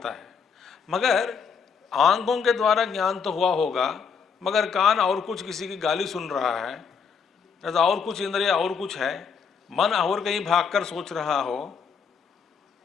है। मगर आंखों के द्वारा ज्ञान तो हुआ होगा, मगर कान और कुछ किसी की गाली सुन रहा है, या और कुछ इंद्रिय और कुछ है, मन और कहीं भागकर सोच रहा हो।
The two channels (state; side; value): quieter; right; 6.2 dB